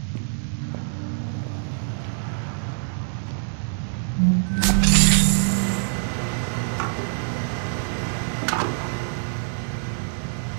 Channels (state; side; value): silent; left; 62 dB below the other